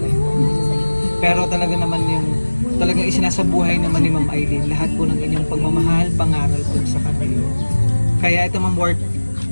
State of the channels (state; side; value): inverted; both; correlation -1.00